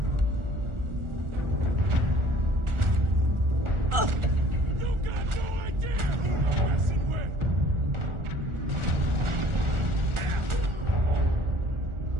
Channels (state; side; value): late; left; 1.4 ms